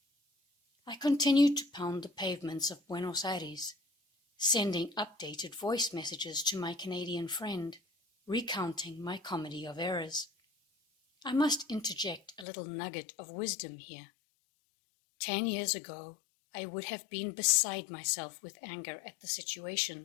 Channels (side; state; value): right; drops out; at 12.5 s